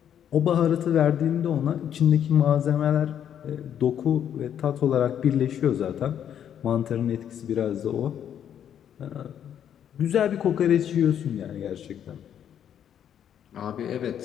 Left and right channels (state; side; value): quieter; right; 9.4 dB